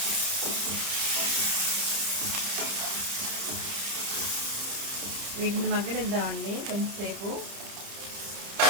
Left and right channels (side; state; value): left; late; 30 ms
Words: వీటిని మగ్గనిద్దామండి కొంచెంసేపు.